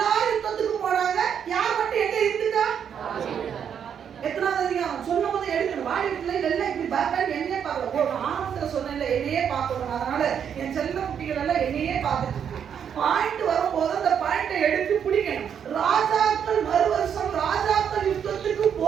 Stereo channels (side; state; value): left; quieter; 8.1 dB